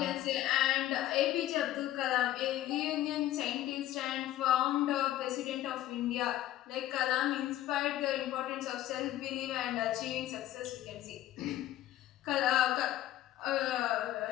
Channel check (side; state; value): right; quieter; 13.9 dB